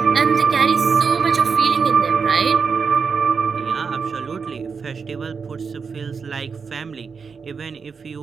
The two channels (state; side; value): quieter; left; 5.6 dB